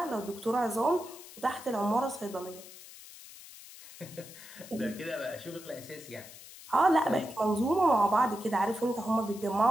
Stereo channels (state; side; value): noise; left; hiss, 17 dB below the sound